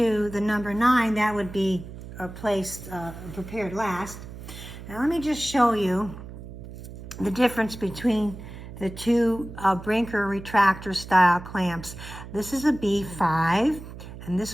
the number 9, that would be prepared last. Now let me just show you the difference between the two Brinker retractor style clamps. This is a B5 and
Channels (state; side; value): noise; right; hum, 13 dB below the sound